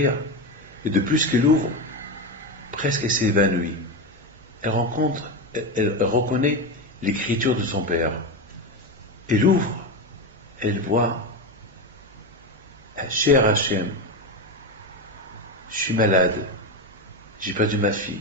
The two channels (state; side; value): normal; both; correlation 0.16